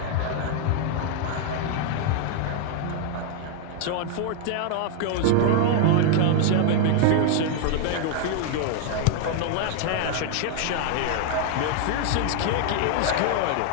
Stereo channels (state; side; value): different; both; correlation 0.00